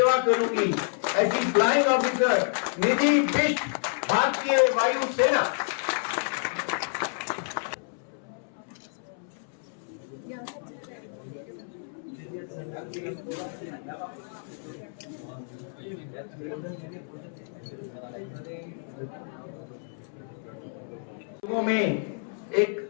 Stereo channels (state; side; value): silent; right; 59 dB below the other